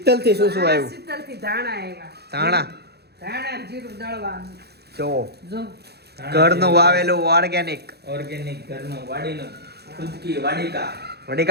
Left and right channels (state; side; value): late; left; 0.48 ms